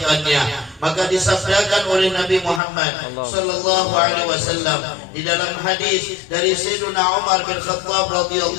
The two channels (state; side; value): drops out; right; at 2.6 s